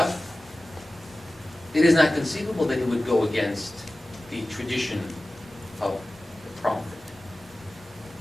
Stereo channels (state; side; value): noise; left; hum, 29 dB below the sound